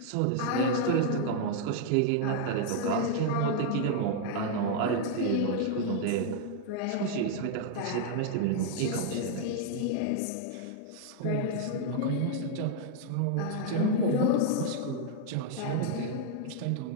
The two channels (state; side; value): different; both; correlation -0.01